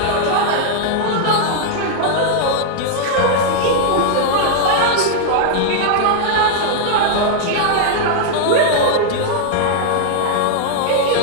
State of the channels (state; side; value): different; both; correlation -0.01